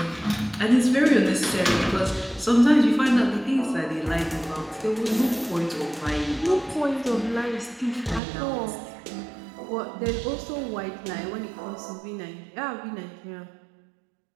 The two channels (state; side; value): drops out; left; at 8.2 s